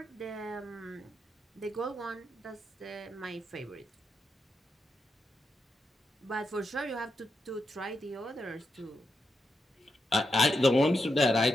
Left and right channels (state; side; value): normal; both; correlation 0.84